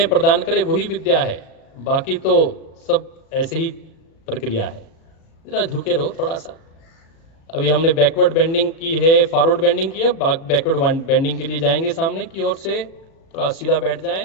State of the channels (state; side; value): late; right; 37 ms